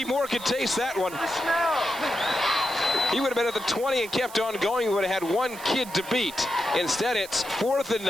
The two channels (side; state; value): right; noise; hiss, 16 dB below the sound